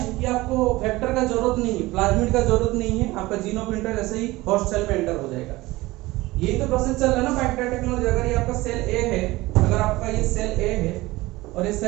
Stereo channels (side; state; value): left; quieter; 19.6 dB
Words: कि आपको वेक्टर का जरूरत नहीं है, प्लाज्मिड का जरूरत नहीं है, आपका जीन ऑफ इंटर ऐसे ही होस्ट सेल में एंटर हो जाएगा। यही तो प्रोसेस चल रहा है ना बैक्टीरिया टेक्नोलॉजी। अगर ये आपका सेल ए है, अगर आपका ये सेल ए है, और ये